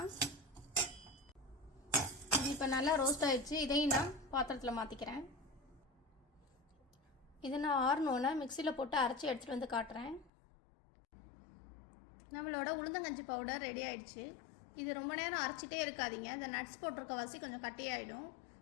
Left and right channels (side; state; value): right; drops out; at 10.3 s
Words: இது இப்போ நல்லா ரோஸ்ட் ஆகிடுச்சு. இதையும் நான் பாத்திரத்தில் மாற்றிக்கிறேன். இதை நான் ஆறணுன்னா மிக்சியில் போட்டு அரைச்சி எடுத்துகிட்டு வந்து காட்டுறேன். நம்மளோட உளுந்தங்கஞ்சி பவுடர் ரெடி ஆகிடுச்சு. இது ரொம்ப நேரம் அரைச்சிட்டே இருக்காதீங்க. இந்த நட்ஸ் போட்டிருக்க வாசி கொஞ்சம் கட்டியாயிடும்.